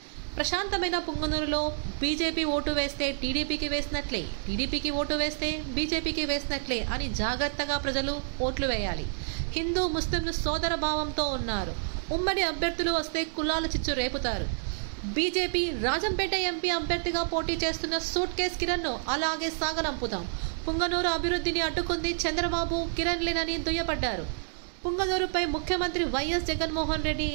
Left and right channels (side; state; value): left; silent; digital silence